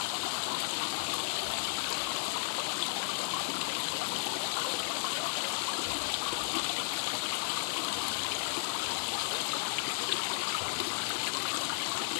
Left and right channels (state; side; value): silent; right; digital silence